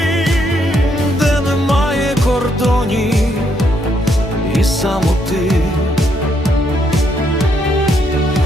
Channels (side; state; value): both; normal; correlation 0.74